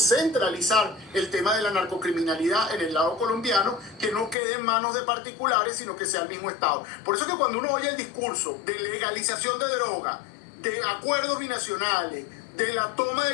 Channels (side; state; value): right; drops out; at 4.4 s